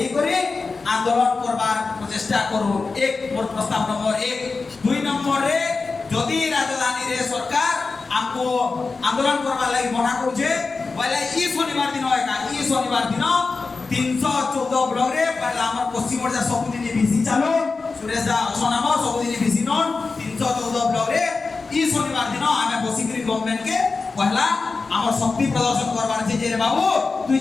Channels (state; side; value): quieter; right; 4.2 dB